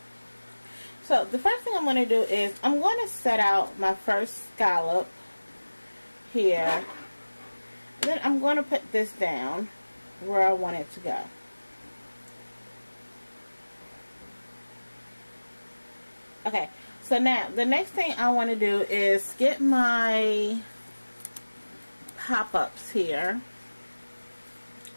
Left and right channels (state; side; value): inverted; both; correlation -1.00